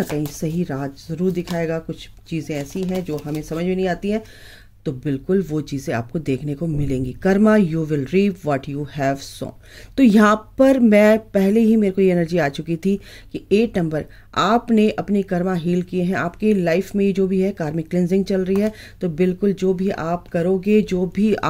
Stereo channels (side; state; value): both; identical; correlation 1.00